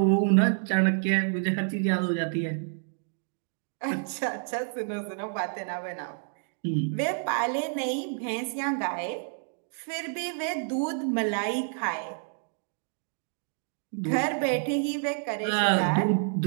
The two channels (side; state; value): left; silent; digital silence